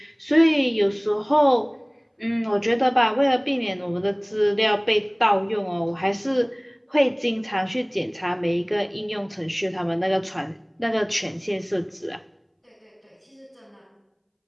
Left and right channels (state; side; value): identical; both; correlation 1.00